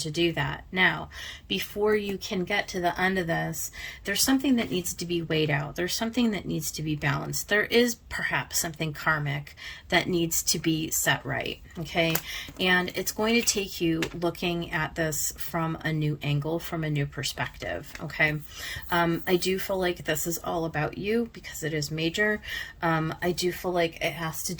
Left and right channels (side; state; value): both; identical; correlation 1.00